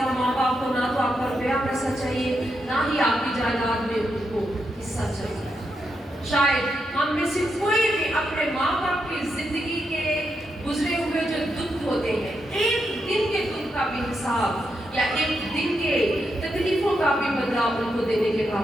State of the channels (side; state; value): both; normal; correlation 0.83